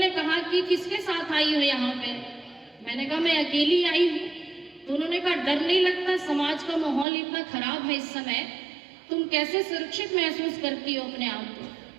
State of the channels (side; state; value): left; drops out; at 7.1 s